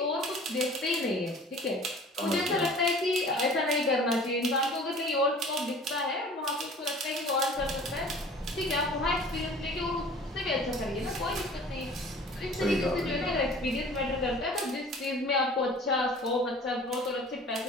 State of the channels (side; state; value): both; normal; correlation 0.46